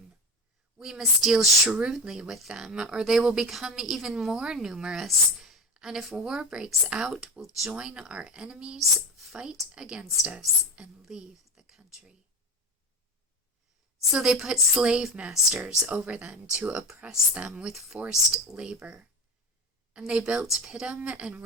we must deal shrewdly with them, or they will become even more numerous, and if war breaks out, will join our enemies, fight against us, and leave the country." So they put slave masters over them to oppress them with forced labor, and they built Pithom and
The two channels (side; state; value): both; normal; correlation 0.25